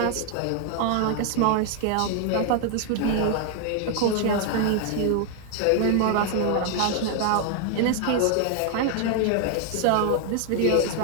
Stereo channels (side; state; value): both; different; correlation 0.00